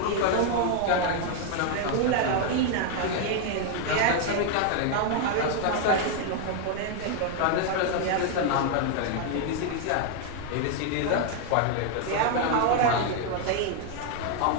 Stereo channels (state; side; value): different; both; correlation 0.00